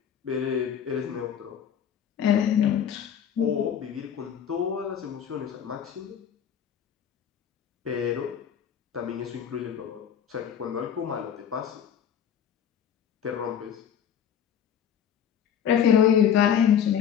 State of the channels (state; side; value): quieter; right; 8.7 dB